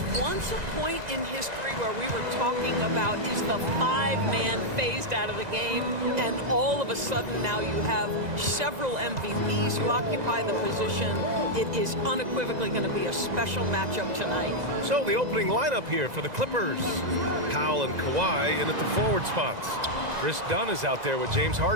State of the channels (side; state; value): left; late; 2.0 ms